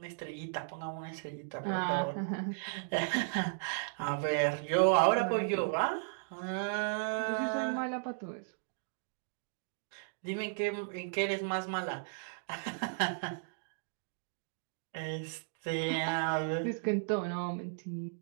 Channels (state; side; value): silent; left; digital silence